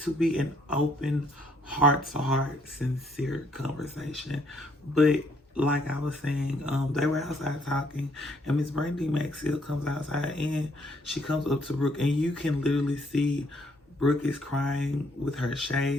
be an open, heart-to-heart, sincere conversation. But like I was saying, they were outside talking, and Miss Brandy Maxfield comes outside, and she comes up to Brooke, and you can literally see Brooke is crying with her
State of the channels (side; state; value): both; normal; correlation 0.68